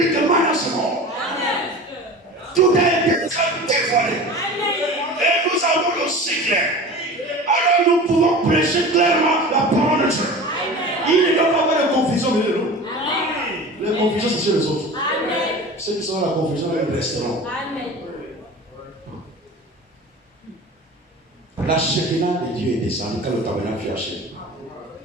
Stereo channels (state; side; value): normal; both; correlation 0.36